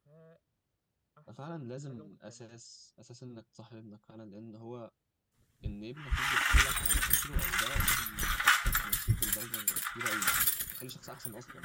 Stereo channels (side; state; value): both; identical; correlation 1.00